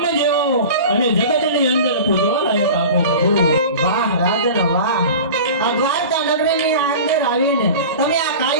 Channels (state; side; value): inverted; both; correlation -0.35